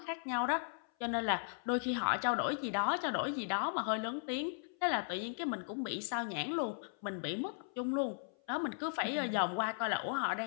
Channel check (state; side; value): silent; right; 53 dB below the other